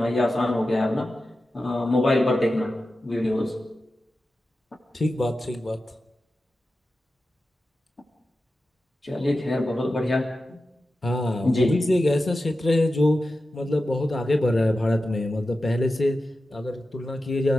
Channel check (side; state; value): both; normal; correlation 0.92